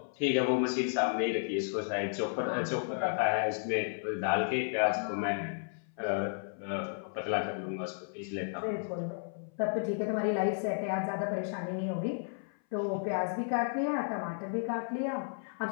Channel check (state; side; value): silent; right; 56 dB below the other